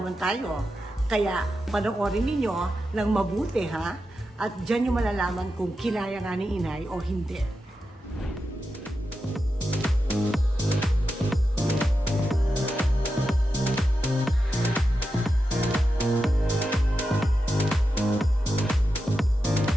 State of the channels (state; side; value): normal; both; correlation 0.89